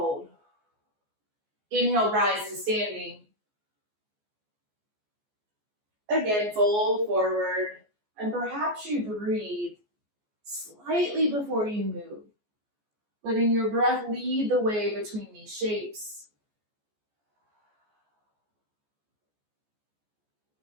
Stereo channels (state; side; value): late; left; 14 ms